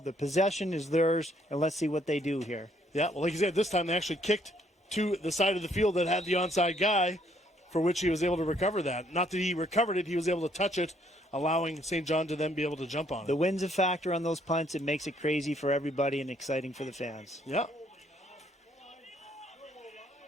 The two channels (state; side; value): normal; both; correlation 0.67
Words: The possession is theirs, and let's see what they do here. Yeah, well, like you said, this time they actually kicked to the side of the field that had the onside guy, for which he was able to recover that. Not that he recovered it, he was able to touch it, allowing St. John to then be able to jump on it. The wind's a factor on those punts. It makes it crazy for everybody and exciting for the fans. Yeah.